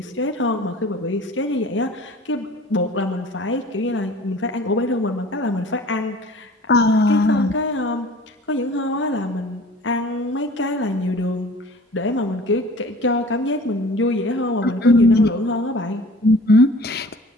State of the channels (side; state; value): both; normal; correlation 0.46